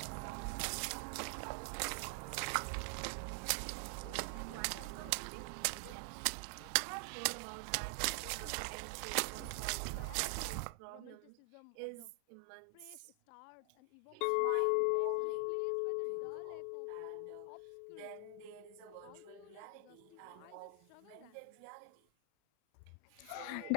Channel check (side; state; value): both; different; correlation 0.00